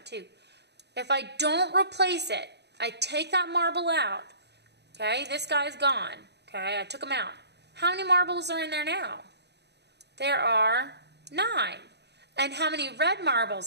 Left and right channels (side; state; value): left; late; 0.49 ms